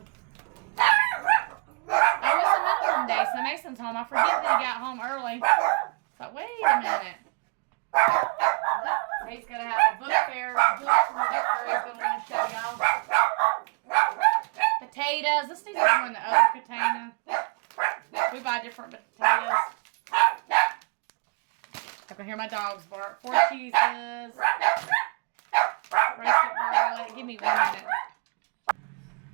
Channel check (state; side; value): quieter; left; 34.0 dB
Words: Oh, it's a minimum day, so Mason's home. I forget that he got home early. But wait a minute. He's going to have a book fair. He's going to want to show y'all. Potatoes. Let's do this one in the other container. We buy different potatoes. I can hear my dogs bark. 4 cheeses. Roasted garlic. Give me 1 minute.